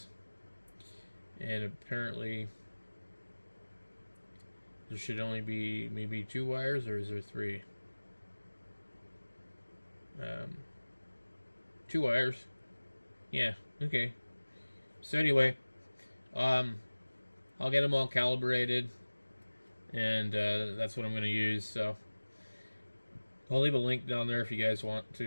And apparently there should only be maybe 2 wires, or is there 3? 2 wires. Yeah, okay. So anyway, I'll get them all calibrated, and that's what I'm going to use. So I'll leave a link down there if you guys want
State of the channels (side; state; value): both; inverted; correlation -1.00